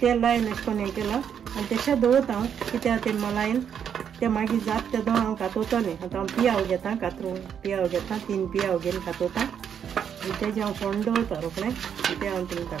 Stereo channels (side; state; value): left; quieter; 8.2 dB